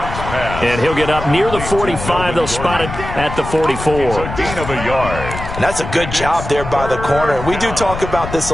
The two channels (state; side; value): noise; left; rumble, 8 dB below the sound